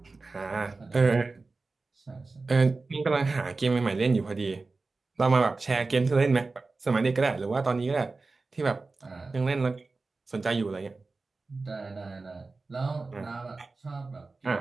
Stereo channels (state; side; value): quieter; left; 3.7 dB